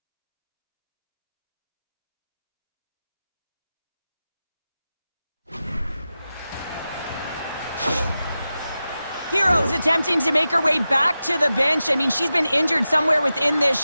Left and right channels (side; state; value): both; inverted; correlation -0.93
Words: Hero's attempting to make her way back to the bench. I mean, she's been injured somewhere within this